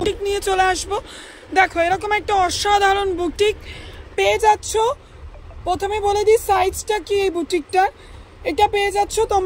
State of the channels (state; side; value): identical; both; correlation 1.00